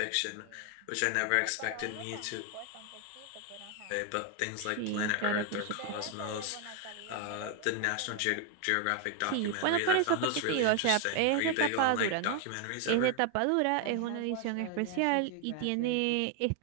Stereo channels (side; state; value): both; different; correlation 0.00